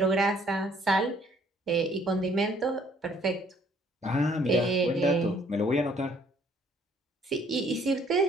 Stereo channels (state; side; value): normal; both; correlation 0.62